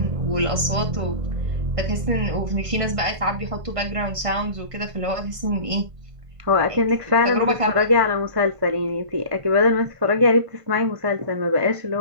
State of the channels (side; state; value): left; late; 1.6 ms